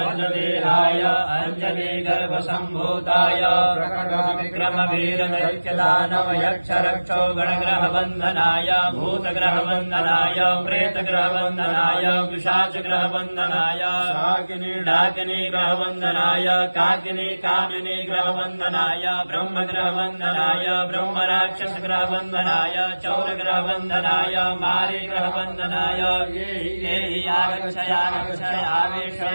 अंजनीगर्भसम्भूताय विक्रमवीरदैत्यदानवयक्षरक्षो गणग्रहवन्दनाय भूतग्रहवन्दनाय प्रेतग्रहवन्दनाय पिशाचग्रहवन्दनाय डाकिनी ग्रहवन्दनाय काकिनी कामिनी ग्रहवन्दनाय ब्रह्मग्रहवन्दनाय ब्रह्मराक्षसग्रहवन्दनाय चौरग्रहवन्दनाय मारी ग्रहवन्दनाय ये हि आगच्छय आवेश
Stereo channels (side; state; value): both; inverted; correlation -1.00